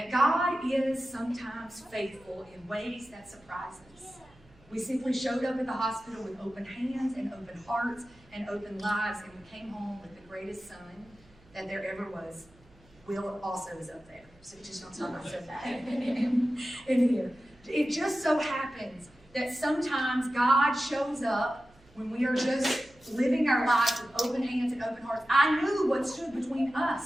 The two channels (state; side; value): noise; right; hum, 28 dB below the sound